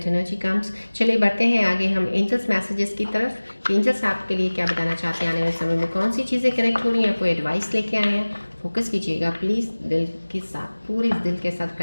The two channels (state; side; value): inverted; both; correlation -1.00